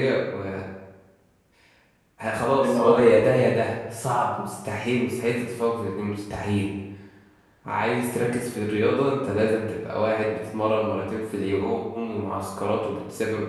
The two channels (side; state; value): both; identical; correlation 1.00